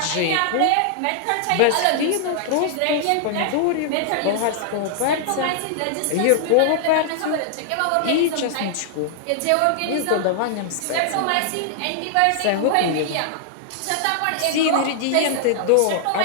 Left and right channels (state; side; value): different; both; correlation -0.01